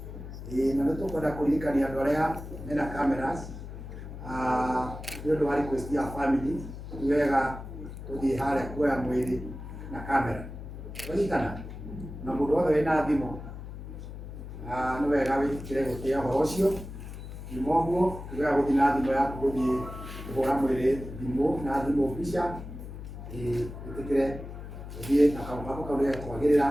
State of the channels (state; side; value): noise; left; hum, 11 dB below the sound